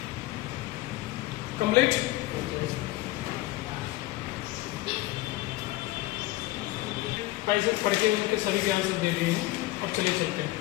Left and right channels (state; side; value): quieter; right; 18.1 dB